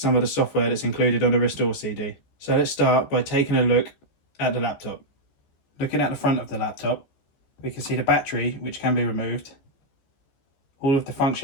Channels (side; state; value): right; late; 14 ms